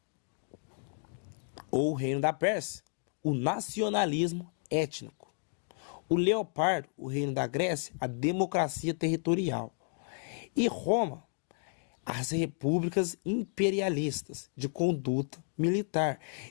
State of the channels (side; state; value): right; silent; 56 dB below the other